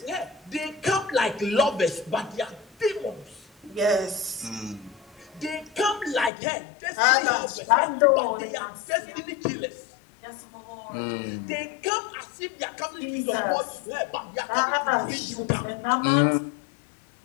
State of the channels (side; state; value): right; drops out; at 6.3 s